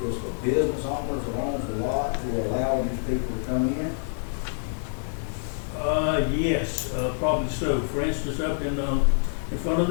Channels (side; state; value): right; silent; digital silence